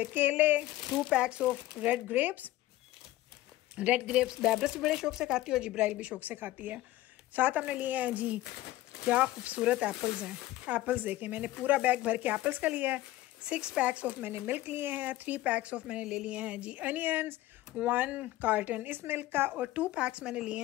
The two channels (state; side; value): quieter; right; 16.3 dB